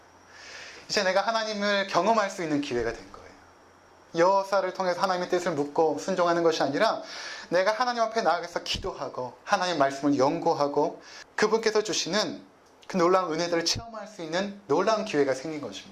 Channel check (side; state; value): both; identical; correlation 1.00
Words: 이제 내가 하나님을 경험할 수 있는 기회가 된 거예요. 여호사를 통해서 하나님의 뜻을 묻고 순종하는 것이 아니라 내가 하나님 앞에 나아가서 기도하고 하나님 말씀을 연구하고 그분께서 주시는 그 놀라운 은혜들을 체험할 수 있는 놀라운 기회가 생긴